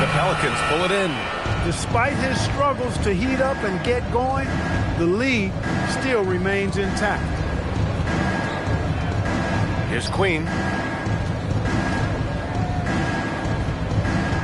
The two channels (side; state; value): both; identical; correlation 1.00